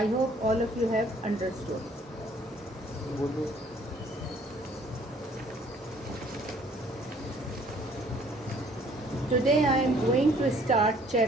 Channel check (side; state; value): both; normal; correlation 0.59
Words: hope all of you have understood. Today I am going to start